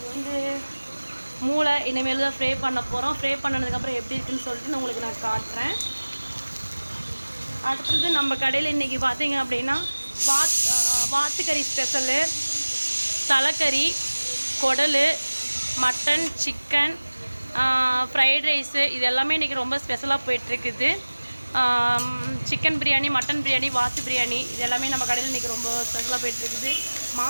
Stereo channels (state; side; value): inverted; both; correlation -1.00